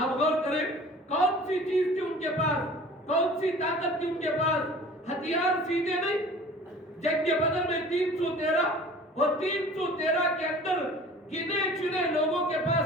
غور کریں, کون سی چیز تھی ان کے پاس؟ کون سی طاقت تھی ان کے پاس؟ ہتھیار سیدھے نہیں. جنگ بدر میں 313 اور 313 کے اندر گنے چنے لوگوں کے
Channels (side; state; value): both; normal; correlation 0.45